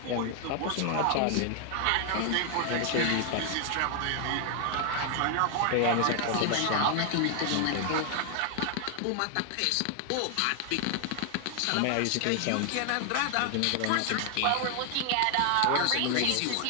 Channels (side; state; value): both; different; correlation 0.00